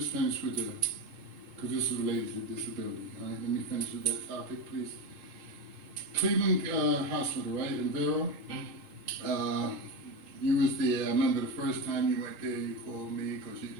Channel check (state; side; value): late; left; 3.8 ms